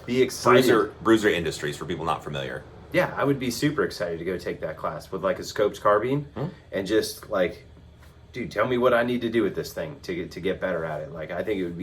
be excited. Bruiser Industries, for people not familiar. Yeah, I would be super excited to go take that class with like a scopes carbine and just like, dude, tell me what I need to do with this thing to get better at it. Like, I think it would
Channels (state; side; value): identical; both; correlation 1.00